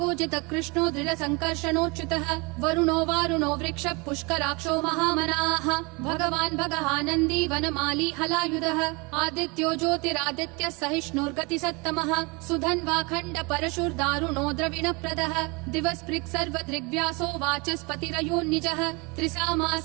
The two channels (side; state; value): left; quieter; 28.2 dB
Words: कृष्णो दृढ संकर्षणोच्युतः वरुणो वारुणो वृक्ष पुष्कराक्षो महामनाः भगवान् भगहानन्दी वनमाली हलायुधः आदित्यो ज्योतिरादित्य सहिष्णुर्गति सत्तमः सुधन्वाखण्ड परशुर्दारुणो द्रविणप्रदः दिवस्पृक् सर्वदृग्व्यासो वाचस्पतिरयोन्निजः